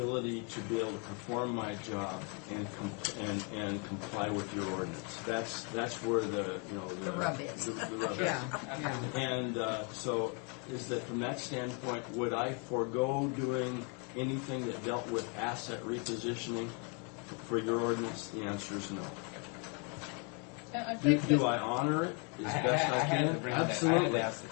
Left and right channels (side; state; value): right; quieter; 36.0 dB